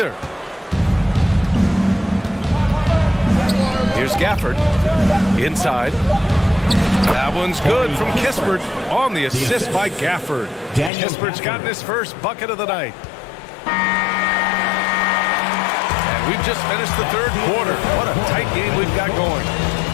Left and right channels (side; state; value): right; drops out; at 10.9 s